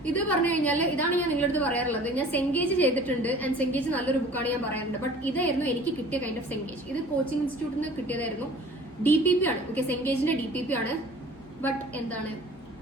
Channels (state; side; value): normal; both; correlation 0.47